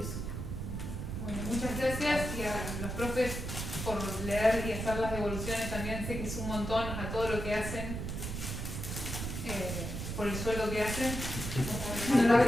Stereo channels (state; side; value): noise; right; rumble, 5 dB below the sound